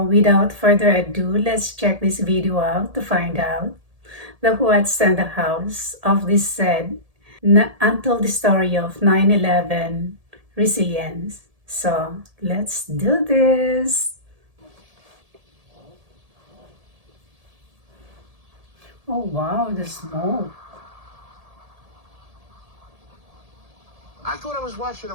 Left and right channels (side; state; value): left; late; 1.7 ms